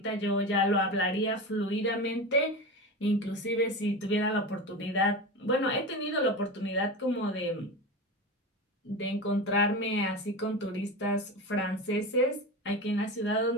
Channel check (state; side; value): normal; both; correlation 0.24